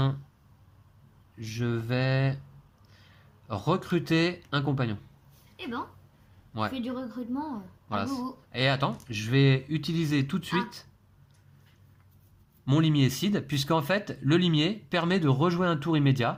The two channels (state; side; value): identical; both; correlation 1.00